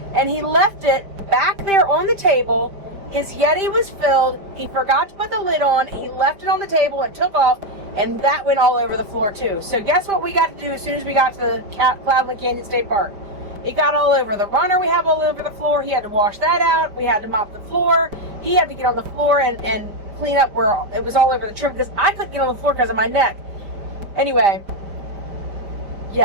he left it back there on the table. His Yeti was filled. He forgot to put the lid on. He left it on the table and took off, and that went all over the floor too. So guess what we got to do as soon as we got to the Cloudland Canyon State Park? It got all over the runner. We have all over the floor. He had to wash that out. We had to mop the floor. He had to get on the floor and clean up where it was all over the trim, because I couldn't get on the floor because of my neck. Anyway,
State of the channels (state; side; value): late; left; 5.0 ms